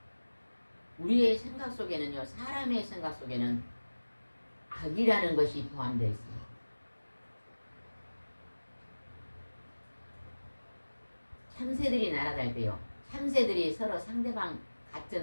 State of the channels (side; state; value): both; inverted; correlation -1.00